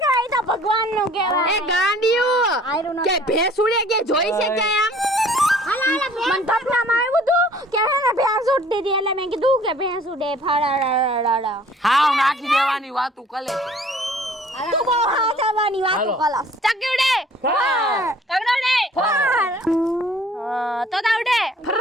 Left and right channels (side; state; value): both; normal; correlation 0.54